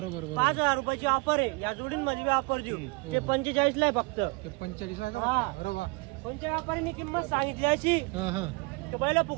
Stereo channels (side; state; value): left; quieter; 28.0 dB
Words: रुपयाची ऑफर आहे, या जोडींमध्ये बी ऑफर देऊ। ते 45 ला आहे फक्त, 45 आहे का? अरे वा, कोणत्या व्यापाऱ्यांनी किंमत सांगितली अशी पहिला